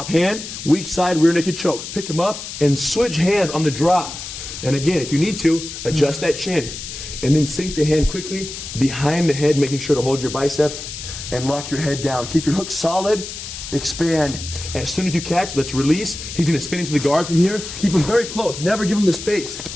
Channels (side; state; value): left; noise; hiss, 9 dB below the sound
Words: hand, weak side, rear naked choke. Pick him up and switch hands on the drop. And again, if you need to, adjust that chin. And then sink the hand quickly behind the head, making sure to hold your bicep and lock your head down. Keep your hook solid, expand. And as soon as you catch, let's release. He's gonna spin into the guard from here. Keep him very close, never give him the space.